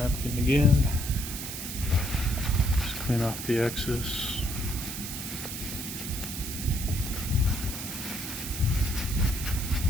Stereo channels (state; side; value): noise; right; hiss, 7 dB below the sound